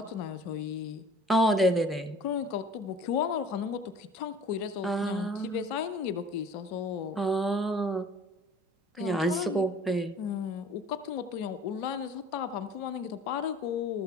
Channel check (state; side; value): normal; both; correlation 0.47